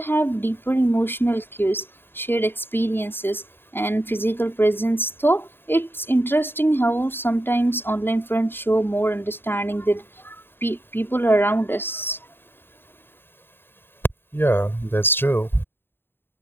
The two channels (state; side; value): late; right; 0.10 ms